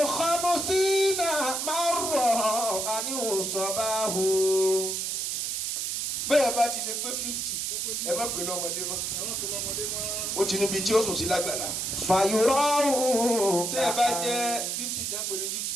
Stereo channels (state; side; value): noise; right; hiss, 1 dB below the sound